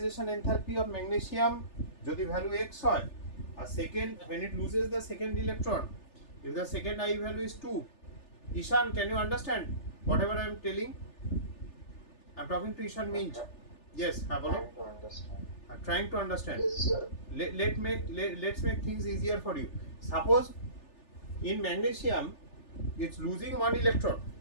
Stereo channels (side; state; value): right; late; 3.4 ms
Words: enthalpy of magnesium যদি value x হয়, আর second when it loses the second electron, if the second I value is 2. Ishan, can you understand whatever I am telling? I'm talking to Ishan Minj. Yes, bolo. I'm trying to understand. Let's make things easier for you. Suppose in magnesium it's losing one electron.